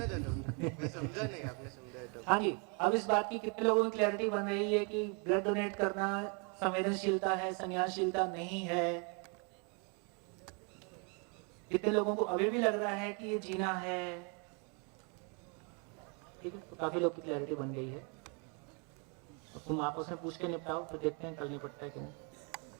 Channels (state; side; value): quieter; left; 35.8 dB